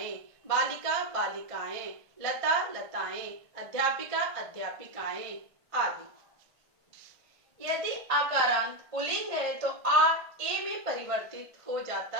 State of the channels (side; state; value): left; late; 1.5 ms